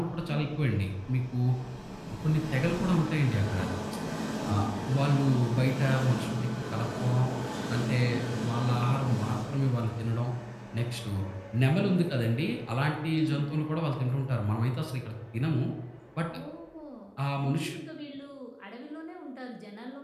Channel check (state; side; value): identical; both; correlation 1.00